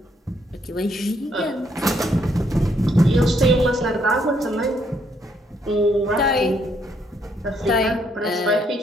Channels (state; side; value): normal; both; correlation 0.72